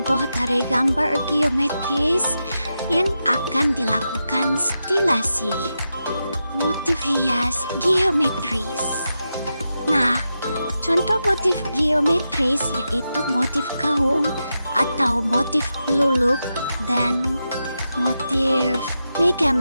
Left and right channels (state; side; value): inverted; both; correlation -0.88